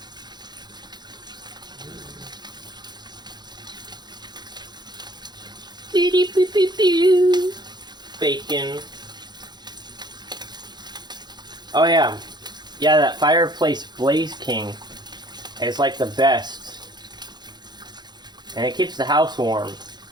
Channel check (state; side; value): late; left; 0.21 ms